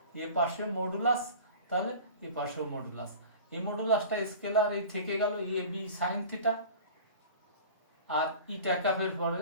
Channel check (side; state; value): both; inverted; correlation -0.39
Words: এ পাশে মডুলাস, তাহলে এ পাশেও মডুলাস। এই মডুলাসটা স্কেলার এই থেকে গেল এ বি সাইন থিটা, আর ইটা ক্যাপের পরে